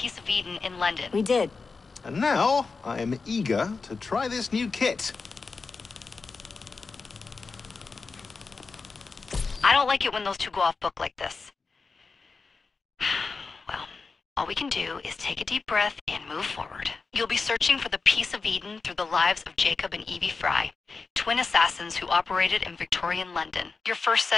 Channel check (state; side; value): quieter; right; 4.4 dB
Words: of Eden in London. We did. And now, I am eager to try this new kit. I don't like it when those two go off book like this. Well, all we can do is take a deep breath and move forward. You'll be searching for the piece of Eden through the lives of Jacob and Evie Fry, twin assassins who operated in Victorian London. Your first